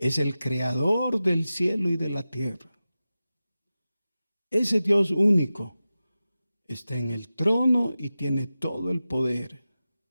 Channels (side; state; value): both; inverted; correlation -0.94